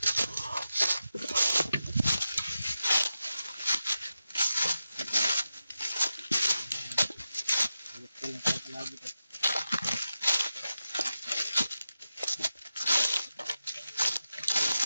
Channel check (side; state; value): both; inverted; correlation -0.91